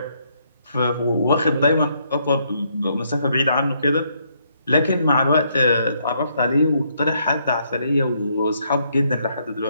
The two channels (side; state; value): both; inverted; correlation -0.73